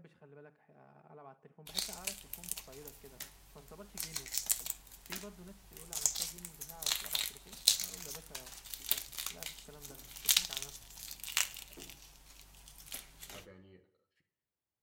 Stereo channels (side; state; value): both; identical; correlation 1.00